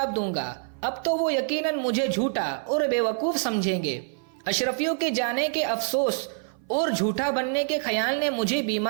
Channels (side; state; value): left; silent; 55 dB below the other